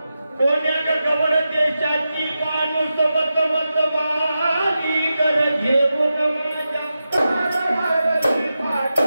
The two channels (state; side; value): inverted; both; correlation -0.91